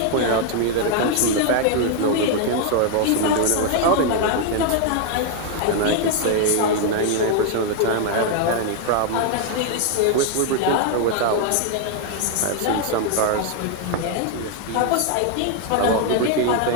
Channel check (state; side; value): different; both; correlation 0.00